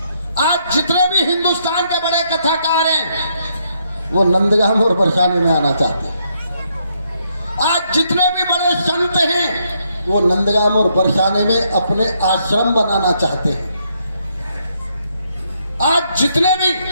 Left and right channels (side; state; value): both; inverted; correlation -0.75